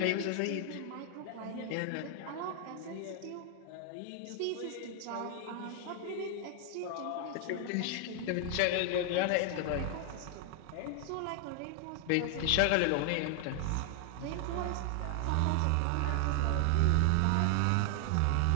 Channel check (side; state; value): both; different; correlation 0.00